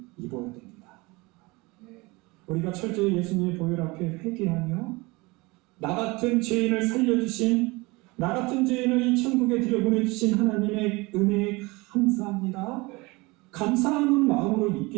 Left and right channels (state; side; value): quieter; left; 24.1 dB